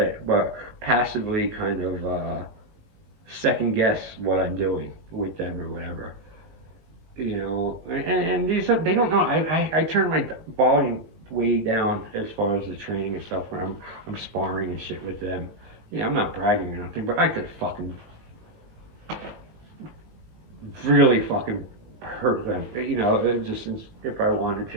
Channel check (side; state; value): left; late; 19 ms